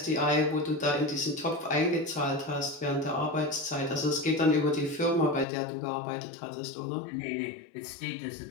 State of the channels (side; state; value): right; drops out; at 5.5 s